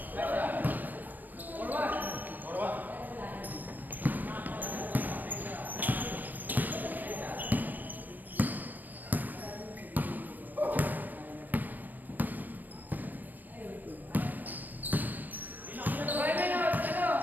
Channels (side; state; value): left; late; 0.085 ms